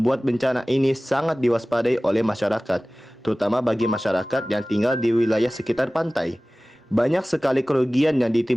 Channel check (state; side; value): normal; both; correlation 0.98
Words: bencana ini sangat diwaspadai oleh masyarakat, terutama bagi masyarakat yang tinggal di wilayah sekitar pantai. Banyak sekali kerugian yang